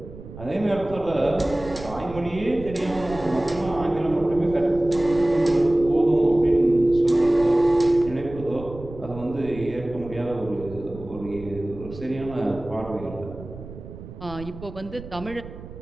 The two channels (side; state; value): right; noise; rumble, 14 dB below the sound